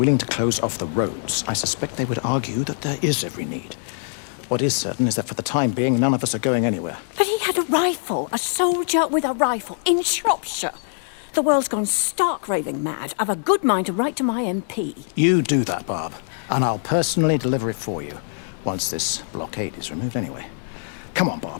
to close off the roads, I suspect they would argue that there is every need. What is certain is that for the time being, none of us are going anywhere. But he had a rifle, a soldier with a rifle, in Shropshire. The world's gone stark raving mad. I've a good mind to write to my MP. You do that, Barb, and I'll personally deliver it for you, once this blockade is removed anyway. Come on,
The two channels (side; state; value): right; silent; digital silence